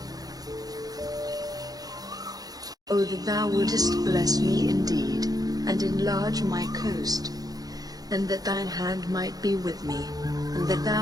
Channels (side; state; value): left; late; 0.18 ms